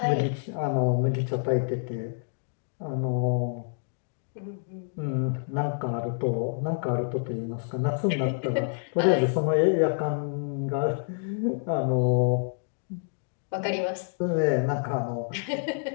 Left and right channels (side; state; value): right; silent; digital silence